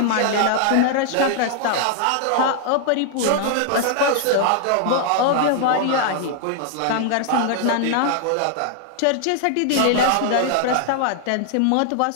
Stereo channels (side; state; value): both; different; correlation 0.00